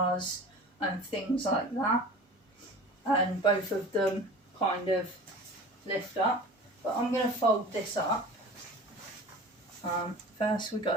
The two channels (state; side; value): normal; both; correlation 0.39